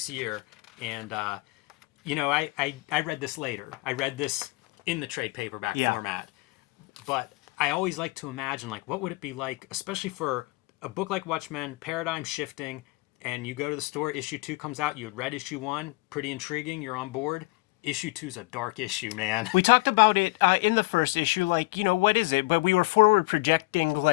year. And, I read this later. I read this in the trade paperback format. But I always like to imagine, what would it be like, especially for a book like Watchmen, paradigm shifting, and you go to the store, issue 2 comes out, you had read issue 1, pretty intriguing, you're on board. Issue 2 is a dark issue, man. We talked about it in the first issue, what is it? But we were forward projecting,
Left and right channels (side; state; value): right; quieter; 24.4 dB